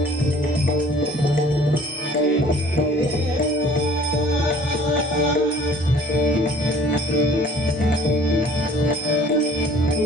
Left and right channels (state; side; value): normal; both; correlation 0.52